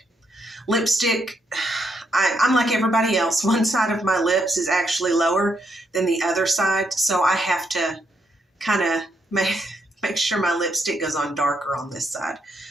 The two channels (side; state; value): both; normal; correlation 0.77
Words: Lipstick, I'm like everybody else. One side of my lips is actually lower than the other side, so I have to kind of make sure my lipstick goes on darker on this side.